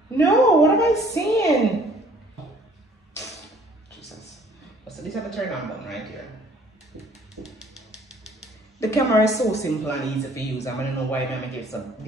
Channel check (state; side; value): normal; both; correlation 0.57